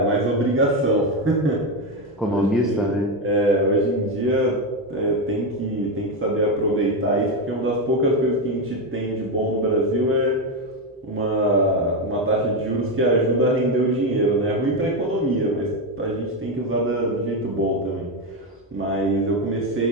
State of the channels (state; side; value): normal; both; correlation 0.10